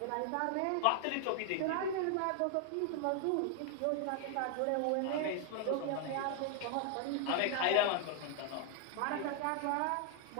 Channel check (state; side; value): different; both; correlation 0.00